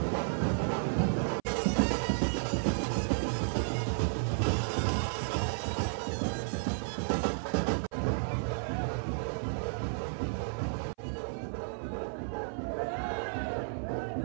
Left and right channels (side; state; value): left; silent; 56 dB below the other